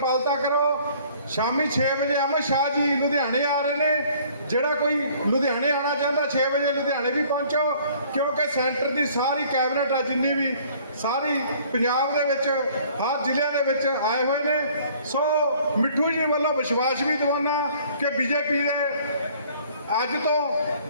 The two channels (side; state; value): both; inverted; correlation -0.56